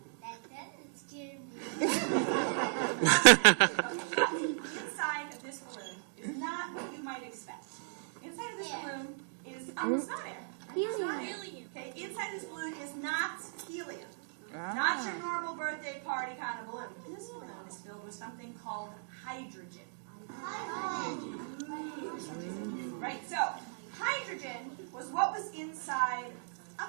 That doesn't scare me. Inside of this balloon is not what you might expect. Inside of this balloon is it's not air. It's not air. Okay, inside this balloon is not helium. Not your normal birthday party kind of balloon. This balloon is filled with something called hydrogen. Right, so hydrogen was what was inside a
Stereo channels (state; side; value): silent; left; digital silence